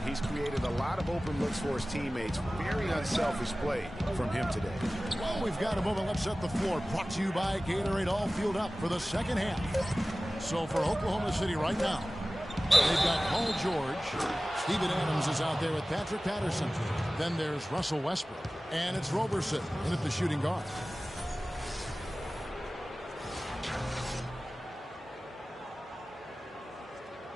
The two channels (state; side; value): normal; both; correlation 0.97